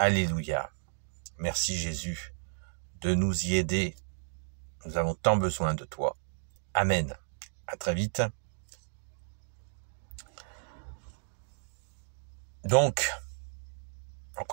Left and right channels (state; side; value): silent; left; digital silence